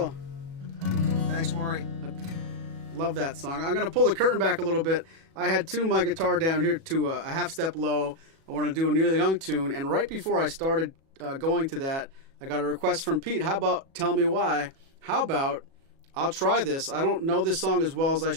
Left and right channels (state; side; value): late; left; 37 ms